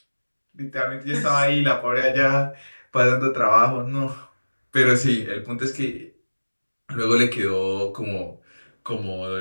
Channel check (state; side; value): inverted; both; correlation -1.00